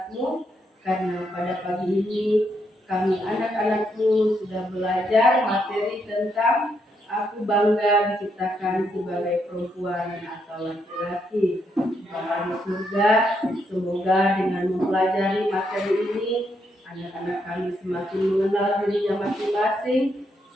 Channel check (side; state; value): both; normal; correlation 0.78